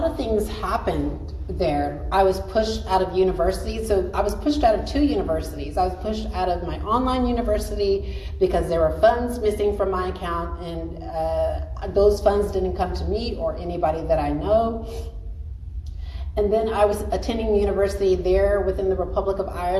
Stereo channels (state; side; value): identical; both; correlation 1.00